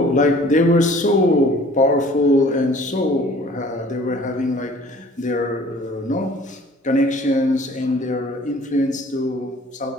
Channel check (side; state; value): both; normal; correlation 0.51